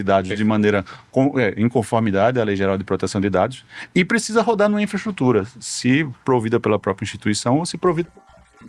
dados de maneira em conformidade à Lei Geral de Proteção de Dados, e precisa rodar numa infraestrutura, se provida pela própria instituição ou se provida por nós.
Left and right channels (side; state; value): both; identical; correlation 1.00